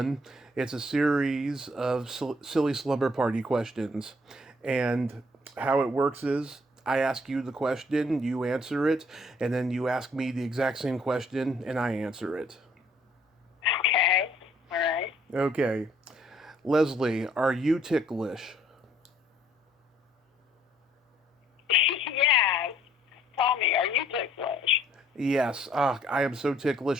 It's a series of silly slumber party questions, and how it works is I ask you the question, you answer it, and then you ask me the exact same question, and I answer it. Okay, all right. Okay, Leslie, are you ticklish? Yes. Tommy, are you ticklish? Yes. I am so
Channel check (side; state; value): both; normal; correlation 0.63